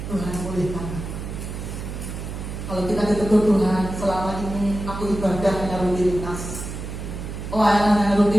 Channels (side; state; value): right; noise; hum, 7 dB below the sound